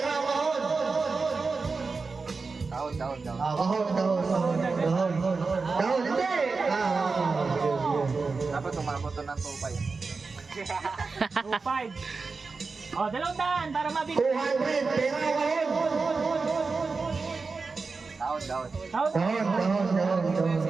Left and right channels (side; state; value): left; quieter; 4.3 dB